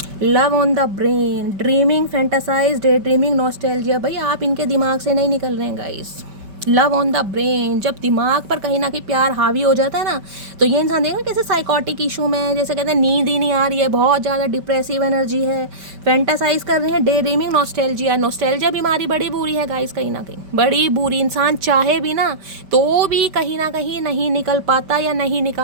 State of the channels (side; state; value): left; late; 5.1 ms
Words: Love on the brain, dreaming, fantasize, day dreaming, nostalgia. भाई आप इनके दिमाग से नहीं निकल रहे हैं guys. Love on the brain, जब दिमाग पर कहीं ना कहीं प्यार हावी हो जाता है ना, तो ये इंसान देखना कैसे साइकोटिक इशू में है, जैसे कहते हैं नींद ही नहीं आ रही है, बहुत ज़्यादा डिप्रेसिव एनर्जी है, फैंटासाइज कर रहे हैं, डे ड्रीमिंग, नॉस्टैल्जिया। नॉस्टैल्जिया बीमारी बड़ी बुरी है गाइस, कहीं ना कहीं बड़ी बुरी। इंसान चाहे भी ना तो भी कहीं ना कहीं नहीं निकल पाता या नहीं